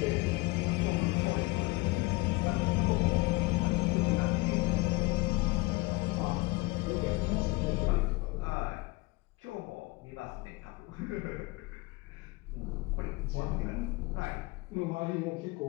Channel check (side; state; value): right; quieter; 23.8 dB